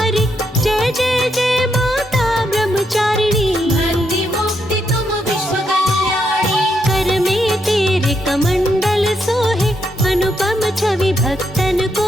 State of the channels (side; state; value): both; normal; correlation 0.79